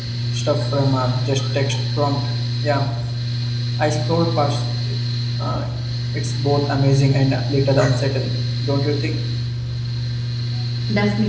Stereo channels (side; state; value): both; identical; correlation 1.00